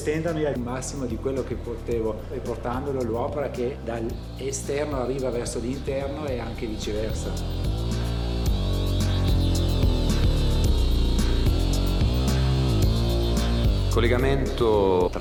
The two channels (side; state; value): both; identical; correlation 1.00